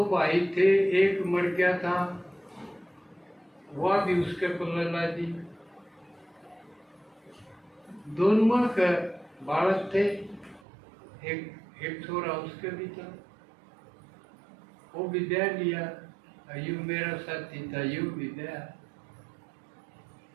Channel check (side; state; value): left; drops out; at 10.6 s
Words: भाई थे, एक मर गया था, वह भी उसके पल्ले ला दी। दोनों के बालक थे, एक छोरा उसके भी था, वो भी दे लिया। यू मेरा साथी था, यू भी दया,